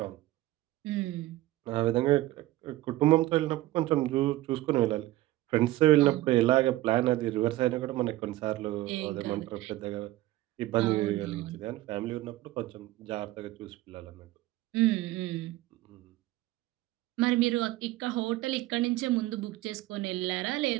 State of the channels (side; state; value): left; quieter; 16.9 dB